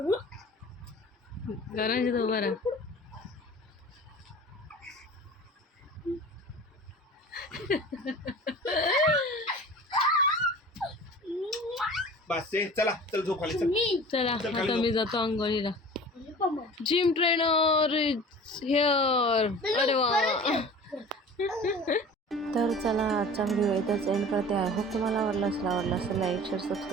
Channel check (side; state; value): both; normal; correlation 0.41